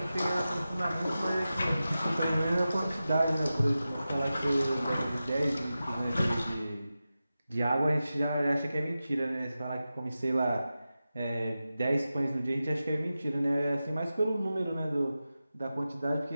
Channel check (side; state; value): both; inverted; correlation -0.93